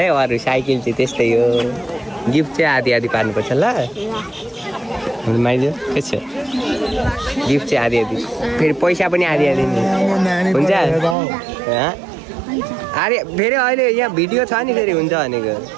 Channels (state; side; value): drops out; left; at 11.2 s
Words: अरू साइकल चाहिँ त्यस्तै हो गिफ्ट चाहिँ आधी पार्नुपर्छ ल माइजो के छ गिफ्ट चाहिँ आधी फेरि पैसा पनि आधी हुन्छ अरे फेरि अहिले यहाँ भिडियो छ नि फेरि हुन्छ भनेको